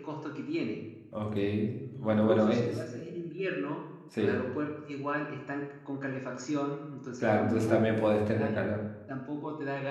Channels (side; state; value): both; identical; correlation 1.00